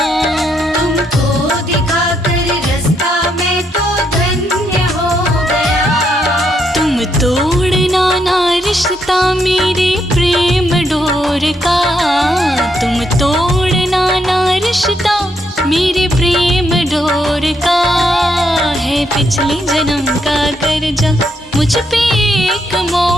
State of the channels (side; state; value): both; normal; correlation 0.77